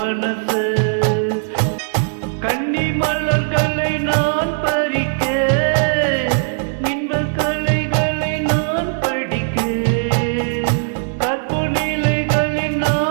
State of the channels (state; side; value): silent; left; digital silence